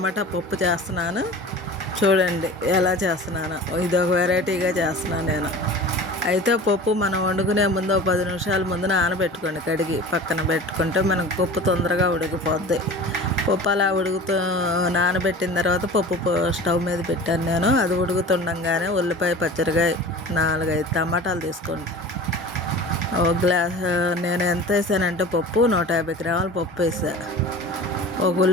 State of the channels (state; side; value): normal; both; correlation 0.38